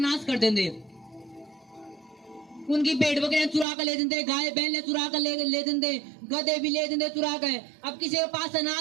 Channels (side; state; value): left; drops out; at 3.7 s